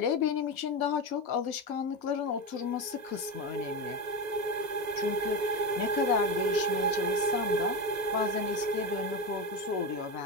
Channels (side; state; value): left; late; 2.0 ms